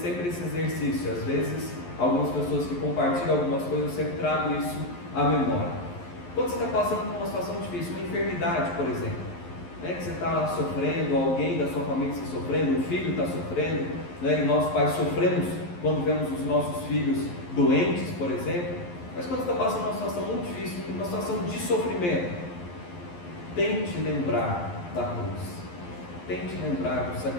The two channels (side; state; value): right; late; 11 ms